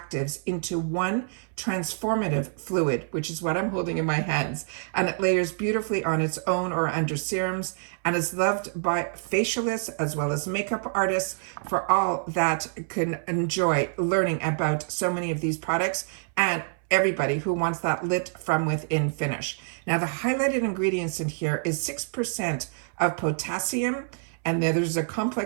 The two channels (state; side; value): silent; left; 60 dB below the other